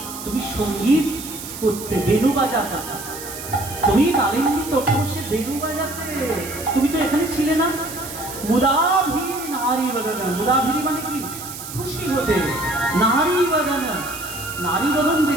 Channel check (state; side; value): noise; right; hiss, 11 dB below the sound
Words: তুমি সঙ্গীত করতে, বেনু বাজাতে। তুমি কালিন্দী তটে বসে বেনু বাজাতে, তুমি তো এখানে ছিলে না। মুদাভিরি নারী বদন। মুদাভিরি মানে কি? খুশি হতে। নারী বদন, নারী বদন